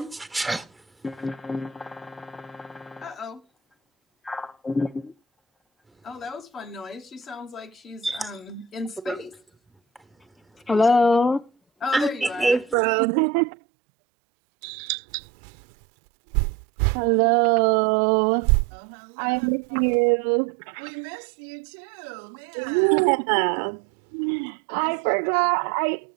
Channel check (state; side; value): drops out; left; at 12.8 s